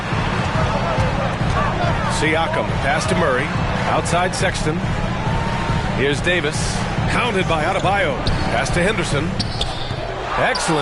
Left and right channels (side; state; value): both; identical; correlation 1.00